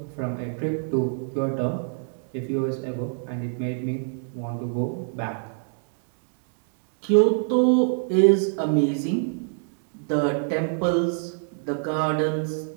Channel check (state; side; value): silent; left; digital silence